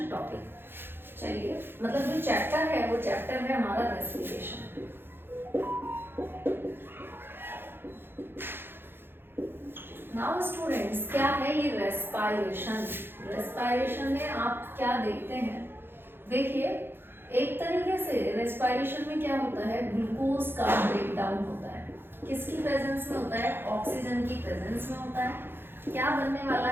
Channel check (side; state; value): left; late; 0.10 ms